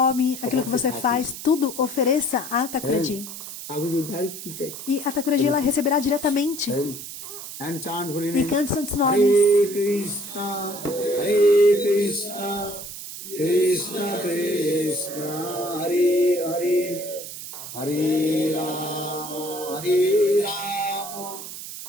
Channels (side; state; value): right; noise; hiss, 10 dB below the sound